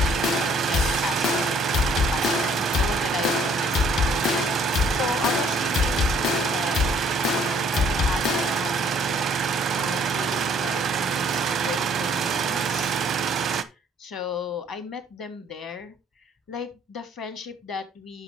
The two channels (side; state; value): both; normal; correlation 0.61